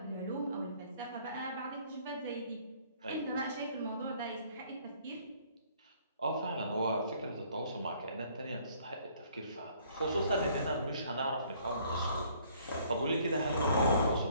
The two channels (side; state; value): both; inverted; correlation -0.61